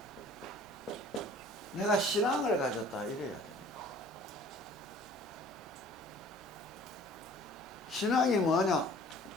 내가 신앙을 가졌다 이래야 돼. 신앙이 뭐냐?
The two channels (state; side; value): normal; both; correlation 0.51